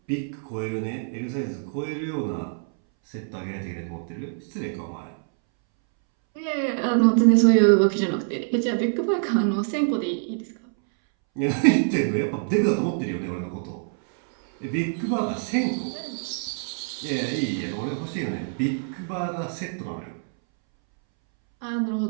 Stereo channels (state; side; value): silent; left; 62 dB below the other